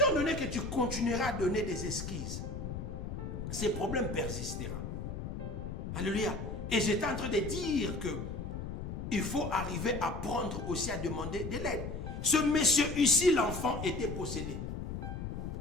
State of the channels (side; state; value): left; noise; rumble, 6 dB below the sound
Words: donné que tu continueras à donner des excuses, ces problèmes persisteront. Alléluia. Et j'étais en train de dire que il faut arriver à prendre aussi à demander de l'aide. Ce monsieur ici, l'enfant, était possédé.